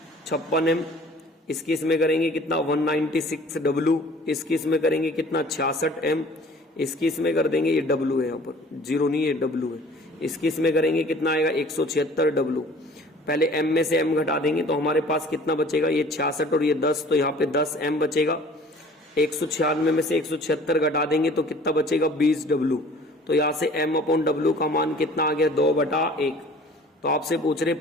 56 M, इसकी इसमें करेंगे कितना 196 W, इसकी इसमें करेंगे कितना 66 M, इसकी इसमें कर देंगे, ये W है यहाँ पर 0 नहीं है W है, इसकी इसमें करेंगे कितना आएगा 176 W। पहले M में से M घटा देंगे तो हमारे पास कितना बचेगा, ये 66 और ये 10, तो यहाँ पे 10 M बचेगा। 196 में से 176 घटा देंगे तो कितना बचेगा 20 W। तो यहाँ से M/W का मान कितना आ गया 2/1। तो आपसे पूछ रहे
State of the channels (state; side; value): normal; both; correlation 0.50